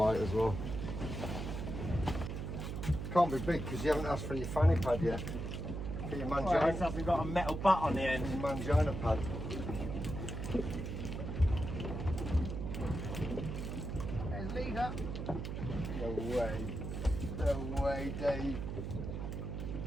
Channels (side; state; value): right; noise; hum, 5 dB below the sound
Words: as well. Can't be big because you haven't asked for your fanny pad yet. For your mangina. Well, this hasn't got a metal butt on the end. Your mangina pad. There's leader. No way. No way, Dave.